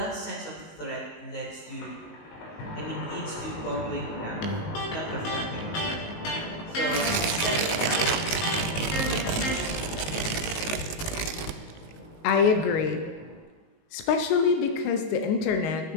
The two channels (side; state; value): right; late; 19 ms